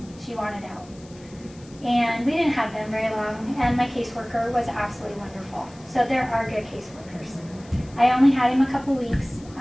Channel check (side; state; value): left; noise; hiss, 25 dB below the sound